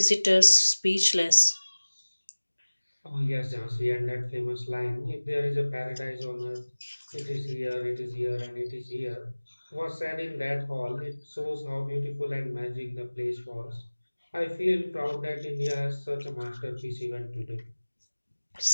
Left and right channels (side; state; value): both; inverted; correlation -1.00